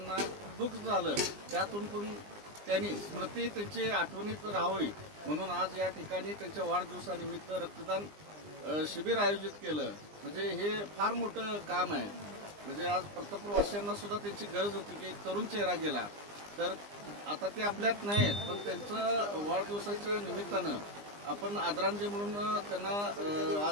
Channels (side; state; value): left; late; 20 ms